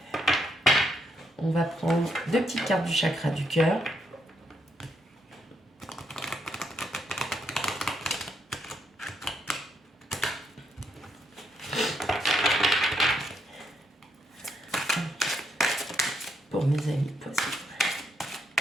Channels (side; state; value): both; normal; correlation 0.76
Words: On va prendre 2 petites cartes du chakra du cœur. Pour mes amis poissons.